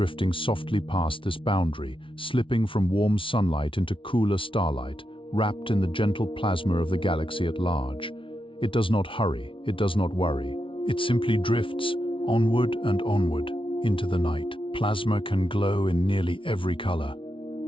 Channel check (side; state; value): right; late; 0.25 ms